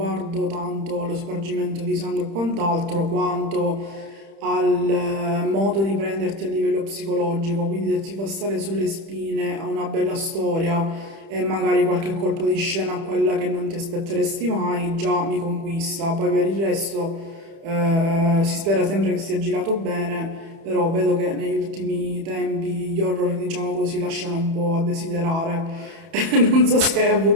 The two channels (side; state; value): left; late; 30 ms